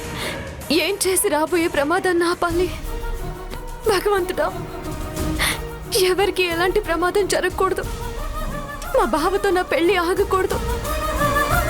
ఏం చేసి రాబోయే ప్రమాదాన్ని ఆపాలి? భగవంతుడా, ఎవరికి ఎలాంటి ప్రమాదం జరగకూడదు. మా బావతో నా పెళ్లి ఆగకూడదు.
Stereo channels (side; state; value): both; identical; correlation 1.00